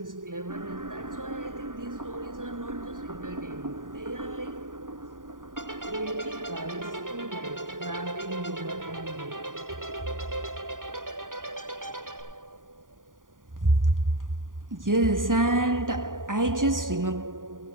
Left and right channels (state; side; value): late; left; 0.89 ms